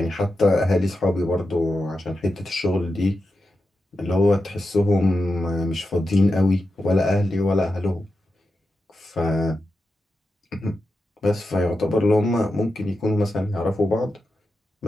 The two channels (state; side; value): normal; both; correlation 0.89